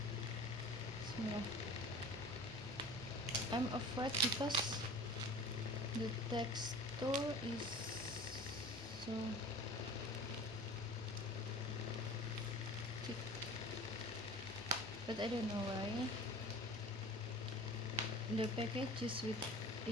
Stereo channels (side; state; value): both; normal; correlation 0.40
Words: Bismillah. I'm afraid because the texture is so thick, but I don't know why. The package is with